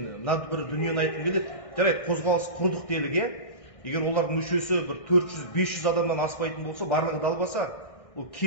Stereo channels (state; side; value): late; right; 1.6 ms